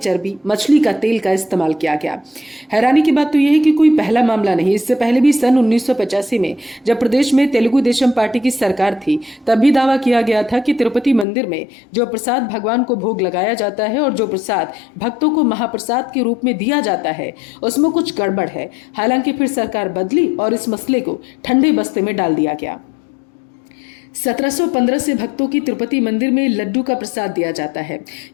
मछली का तेल का इस्तेमाल किया गया। हैरानी की बात तो यह है कि कोई पहला मामला नहीं। इससे पहले भी सन 1985 में जब प्रदेश में तेलुगु देशम पार्टी की सरकार थी, तब भी दावा किया गया था कि तिरुपति मंदिर में जो प्रसाद भगवान को भोग लगाया जाता है और जो प्रसाद भक्तों को महाप्रसाद के रूप में दिया जाता है, उसमें कुछ गड़बड़ है। हालांकि फिर सरकार बदली और इस मसले को ठंडे बस्ते में डाल दिया गया। 1715 से भक्तों की तिरुपति मंदिर में लड्डू का प्रसाद दिया जाता है।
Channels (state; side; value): drops out; right; at 11.2 s